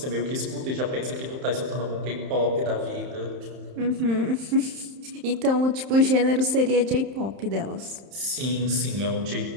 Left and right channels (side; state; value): left; late; 31 ms